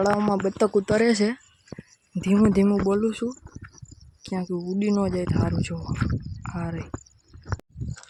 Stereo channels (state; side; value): identical; both; correlation 1.00